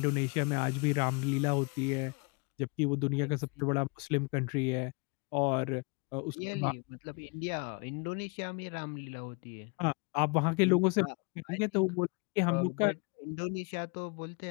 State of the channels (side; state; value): right; quieter; 31.5 dB